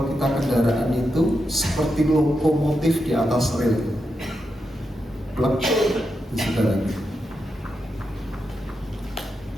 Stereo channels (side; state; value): both; normal; correlation 0.86